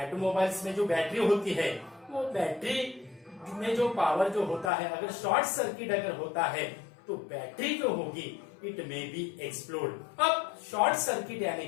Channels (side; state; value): right; drops out; at 4.7 s